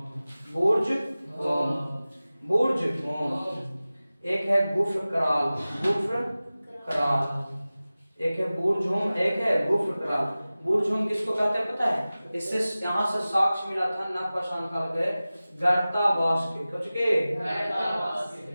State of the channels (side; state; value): both; inverted; correlation -0.97